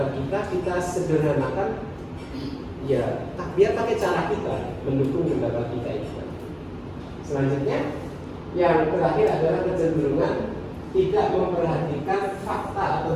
kita sederhanakan. Ya, biar pakai cara kita mendukung pendapat kita itu. Selanjutnya, yang terakhir adalah kecenderungan tidak memperhatikan fakta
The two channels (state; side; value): identical; both; correlation 1.00